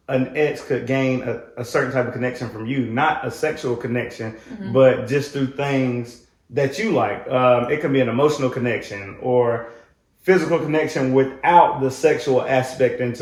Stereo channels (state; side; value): identical; both; correlation 1.00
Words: an ex could gain a certain type of connection from you, not a sexual connection, but just through things that you like. It can be an emotional connection or physical connection without the sexual aspect